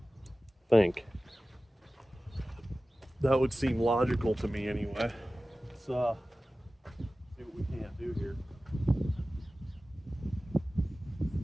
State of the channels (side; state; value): both; normal; correlation 0.96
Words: I think. That would seem logical to me anyway. Let's see what we can't do here.